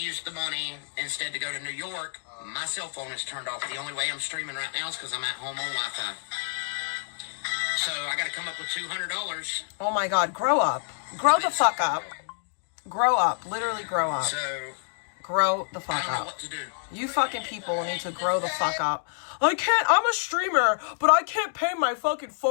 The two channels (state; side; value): silent; right; digital silence